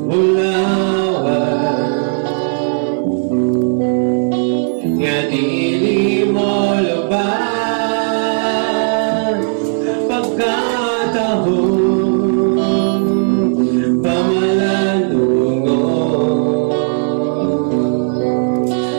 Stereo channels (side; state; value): left; silent; digital silence